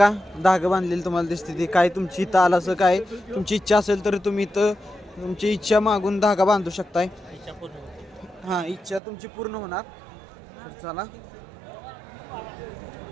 धागं बांधलेली तुम्हाला दिसते. ती काय तुमची इथं आलं असं काय तुमची इच्छा असेल तर तुम्ही इथं तुमची इच्छा मागून धागा बांधू शकताय. हां इच्छा तुमची पूर्ण होणार. तर चला.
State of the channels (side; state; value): left; drops out; at 9.0 s